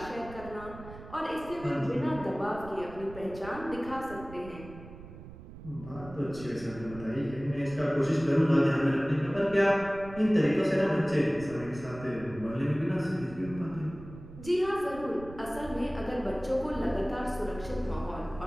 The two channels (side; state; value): right; noise; rumble, 15 dB below the sound